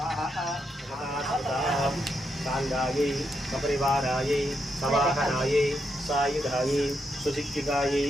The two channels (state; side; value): normal; both; correlation 0.81